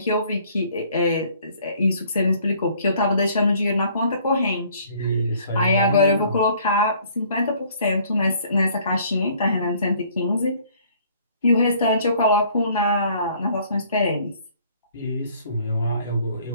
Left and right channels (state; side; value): inverted; both; correlation -0.59